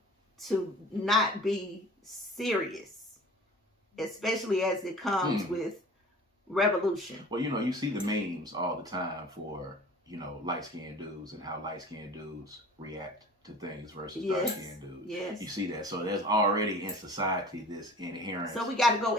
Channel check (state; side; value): normal; both; correlation 0.42